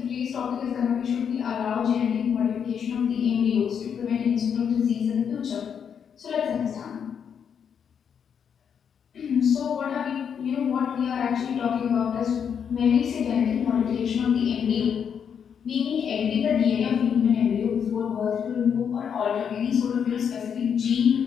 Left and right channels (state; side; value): quieter; right; 7.5 dB